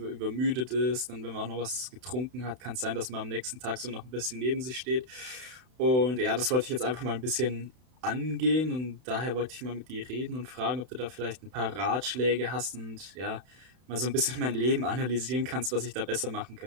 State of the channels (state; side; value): late; left; 32 ms